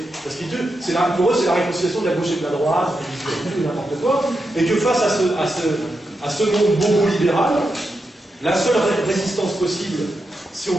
parce que pour eux c'est la réconciliation de la gauche et de la droite, n'importe quoi, et que face à ce monde bobo-libéral, la seule résistance possible, si on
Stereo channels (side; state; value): both; normal; correlation 0.86